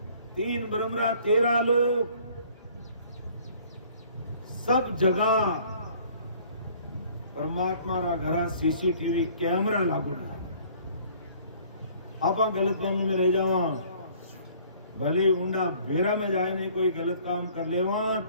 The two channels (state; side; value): inverted; both; correlation -0.56